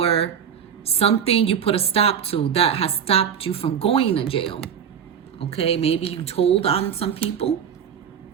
something you put a stop to that has stopped you from going to jail. Okay, maybe you told on some people.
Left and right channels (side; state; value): left; quieter; 8.0 dB